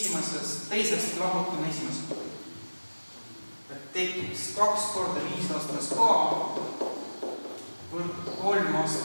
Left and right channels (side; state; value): both; inverted; correlation -1.00